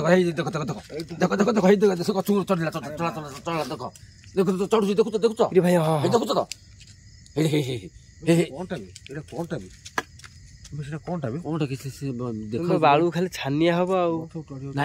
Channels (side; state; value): both; identical; correlation 1.00